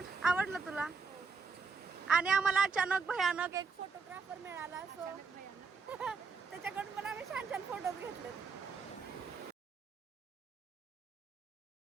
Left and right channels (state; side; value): quieter; left; 4.9 dB